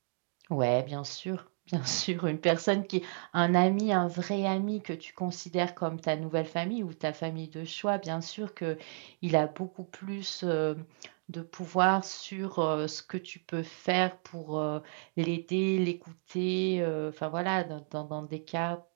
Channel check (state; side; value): silent; left; 56 dB below the other